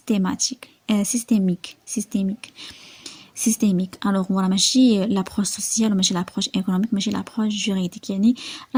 systémique. Alors voilà ماشي l'approche sociale وماشي l'approche économique ماشي l'approche juridique. يعني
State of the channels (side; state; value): both; identical; correlation 1.00